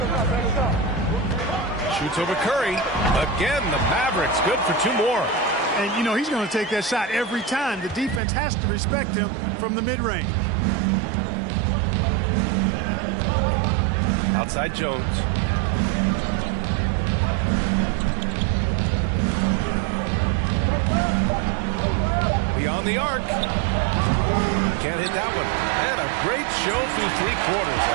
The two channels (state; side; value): drops out; left; at 8.2 s